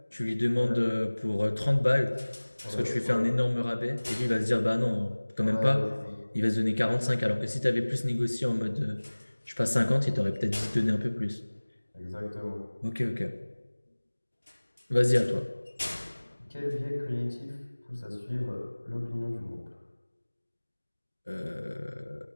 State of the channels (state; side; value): inverted; both; correlation -1.00